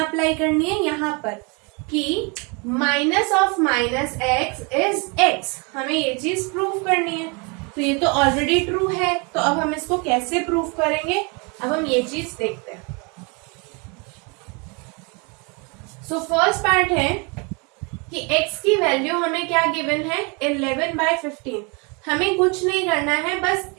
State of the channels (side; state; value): left; quieter; 31.7 dB